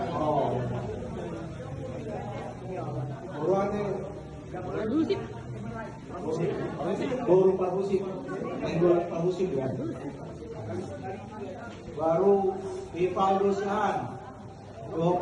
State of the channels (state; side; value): identical; both; correlation 1.00